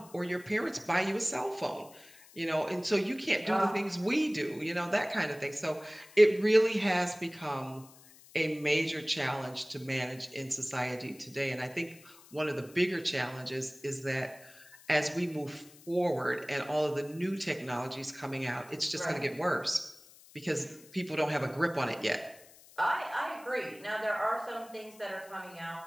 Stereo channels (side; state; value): left; noise; hiss, 23 dB below the sound